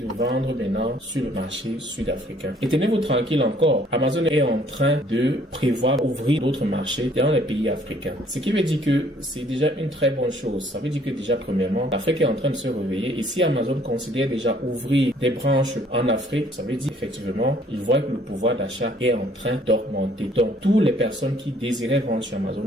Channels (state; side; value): normal; both; correlation 0.60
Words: de vendre maintenant sur le marché sud-africain. Et tenez-vous tranquille encore, Amazon est en train de prévoir ouvrir d'autres marchés dans les pays africains. Ce qui veut dire que c'est déjà une très bonne chose. Ça veut dire que déjà premièrement, l'Afrique est en train de se réveiller et si Amazon considère déjà ouvrir des branches en Afrique, ça veut dire effectivement, ils voient que le pouvoir d'achat est en train d'augmenter. Donc, toutes les personnes qui désiraient vendre sur Amazon